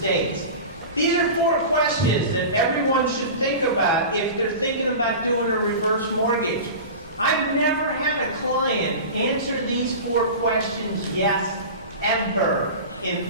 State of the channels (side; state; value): both; inverted; correlation -0.31